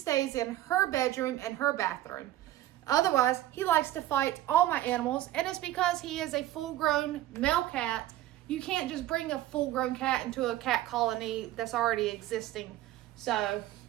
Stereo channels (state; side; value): quieter; left; 14.5 dB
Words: in her bedroom and her bathroom. Otherwise, he likes to fight all my animals, and it's because he is a full-grown male cat. You can't just bring a full-grown cat into a cat colony that's already existing. So